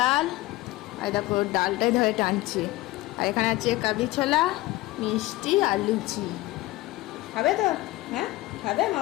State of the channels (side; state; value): right; quieter; 18.8 dB